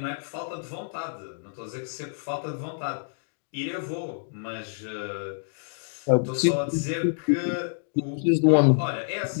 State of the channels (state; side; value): silent; right; digital silence